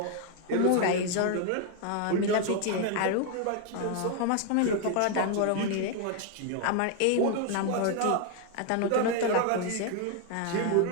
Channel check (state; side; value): different; both; correlation 0.00